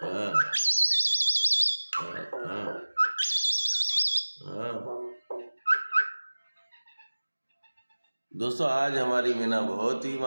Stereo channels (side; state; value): both; inverted; correlation -1.00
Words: हाँ हाँ हाँ हाँ। दोस्तों आज हमारी मीना बहुत ही